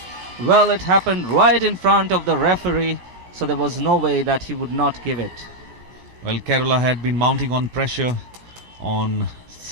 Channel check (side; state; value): left; late; 17 ms